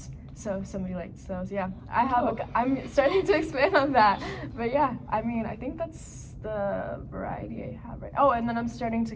so if somebody likes those, yeah. I'm starting to expand on that, but yeah, I mean, I think that's the variety I have right now. Oh, and then I'm starting to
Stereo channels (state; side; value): identical; both; correlation 1.00